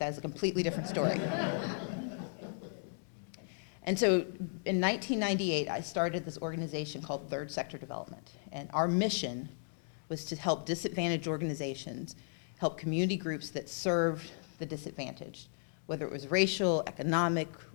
a completely different story. And so in 1998, I started this organization called Third Sector Development. And our mission was to help disadvantaged organizations, help community groups that served the disadvantaged, whether it was racial, economic,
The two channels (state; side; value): silent; right; digital silence